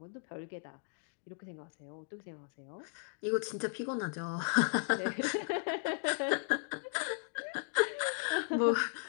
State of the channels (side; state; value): right; silent; digital silence